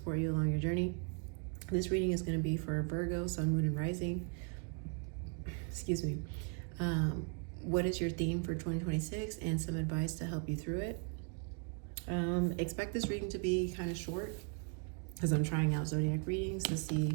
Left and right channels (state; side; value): quieter; left; 38.7 dB